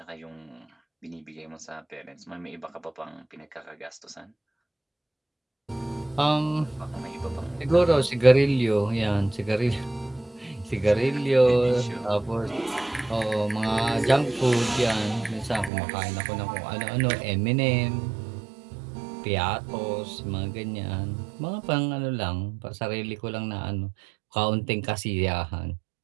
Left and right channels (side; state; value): left; drops out; at 15.7 s